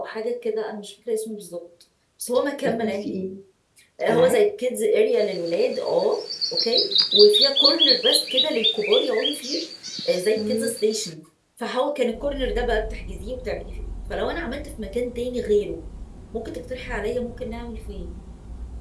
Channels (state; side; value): identical; both; correlation 1.00